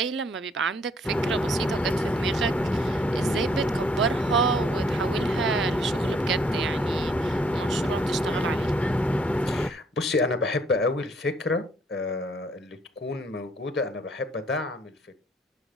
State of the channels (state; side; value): normal; both; correlation 0.66